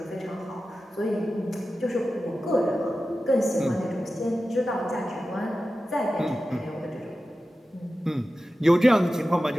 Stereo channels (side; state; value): both; normal; correlation 0.94